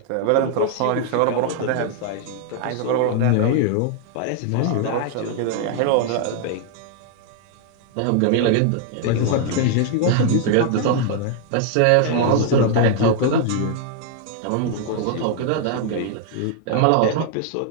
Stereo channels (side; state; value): both; different; correlation 0.00